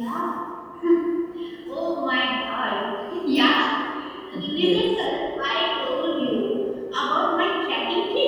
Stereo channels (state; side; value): identical; both; correlation 1.00